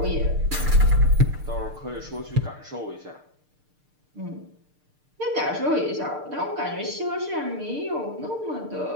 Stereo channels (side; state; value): left; late; 6.6 ms